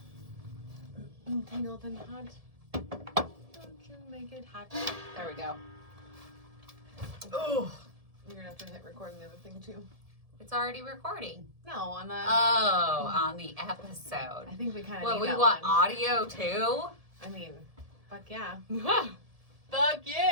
Tangled and hot. Don't you make it hot. There we go. Oh. You're gonna have to hit record on the other thing too. It's already recording. No, on the. Oh, on the episode. I think we kind of. Well, need we that want one. audio too. I mean, fuck yeah. Fuck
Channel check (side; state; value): left; late; 1.7 ms